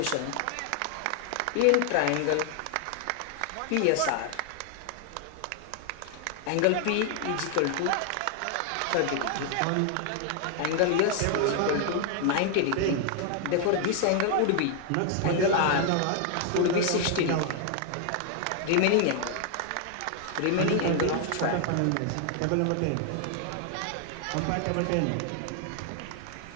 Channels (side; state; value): both; different; correlation 0.00